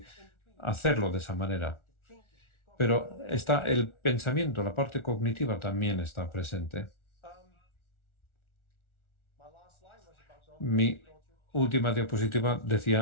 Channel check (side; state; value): right; late; 1.4 ms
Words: hacerlo de esa manera. Pero está el pensamiento, la parte cognitiva también está presente. Mi última diapositiva